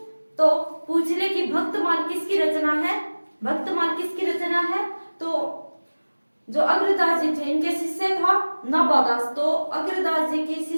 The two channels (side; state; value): both; inverted; correlation -1.00